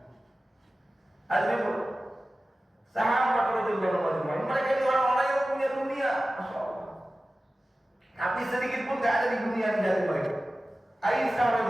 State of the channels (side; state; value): both; normal; correlation 0.96